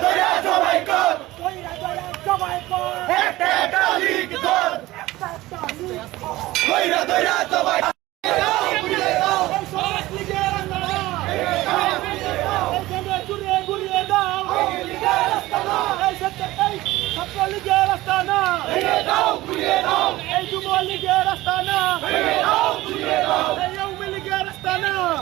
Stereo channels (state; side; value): quieter; left; 17.8 dB